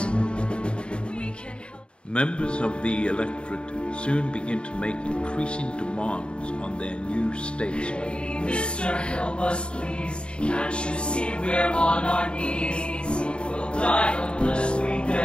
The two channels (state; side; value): late; right; 0.054 ms